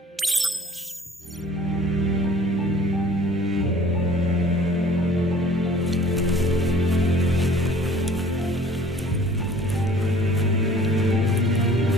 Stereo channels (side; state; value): both; normal; correlation 0.51